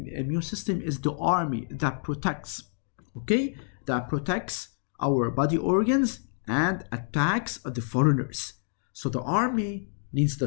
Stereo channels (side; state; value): right; silent; 59 dB below the other